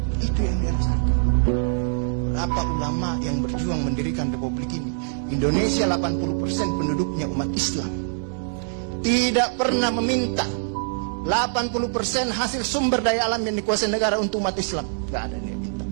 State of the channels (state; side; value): silent; left; 61 dB below the other